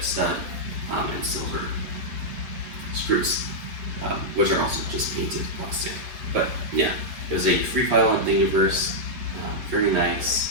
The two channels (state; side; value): late; left; 8.2 ms